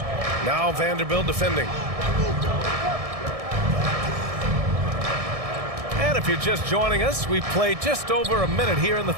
Now Vanderbilt defending. And if you're just joining us, we've played just over a minute here in the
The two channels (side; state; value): left; late; 1.6 ms